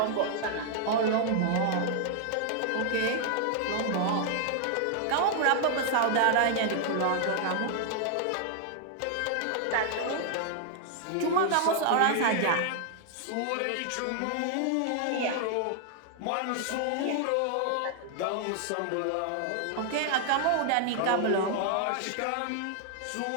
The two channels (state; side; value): different; both; correlation 0.00